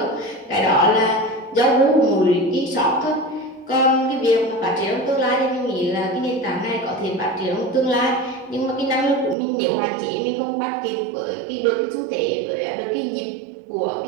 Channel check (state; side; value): drops out; left; at 9.3 s